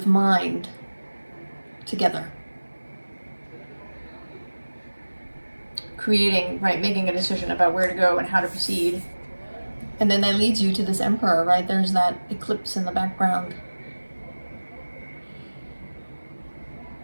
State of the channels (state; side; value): inverted; both; correlation -1.00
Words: mind together. Creating, right, making a decision about where to go and how to proceed. And then that leads you to this Emperor, right? There's that eclipse in the background.